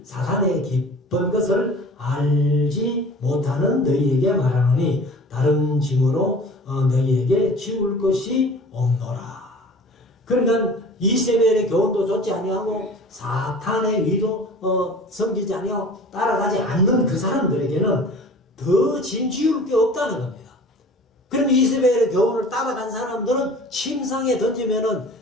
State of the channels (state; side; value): normal; both; correlation 0.43